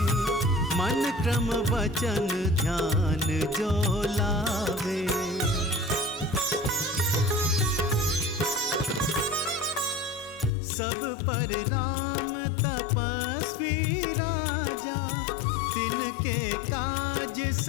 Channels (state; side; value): drops out; right; at 10.5 s